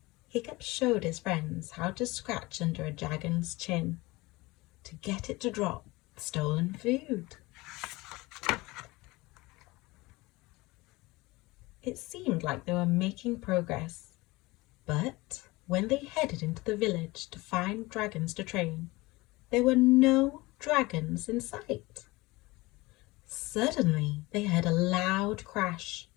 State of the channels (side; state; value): right; quieter; 21.8 dB